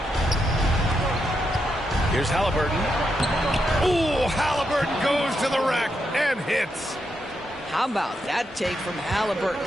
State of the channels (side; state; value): both; normal; correlation 0.83